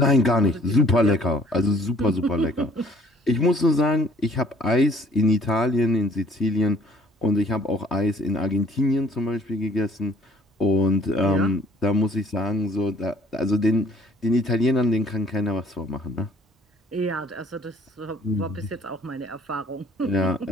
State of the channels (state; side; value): normal; both; correlation 0.56